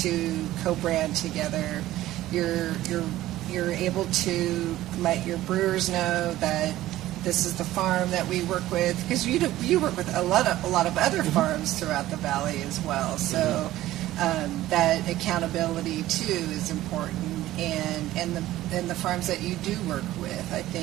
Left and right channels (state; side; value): quieter; left; 15.2 dB